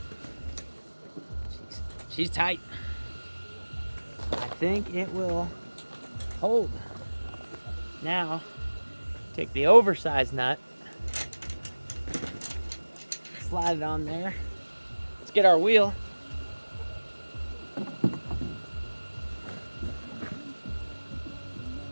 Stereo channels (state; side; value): inverted; both; correlation -1.00